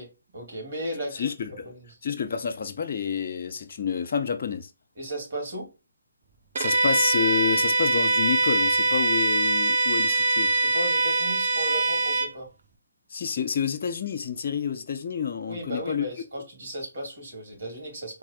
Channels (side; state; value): both; inverted; correlation -0.78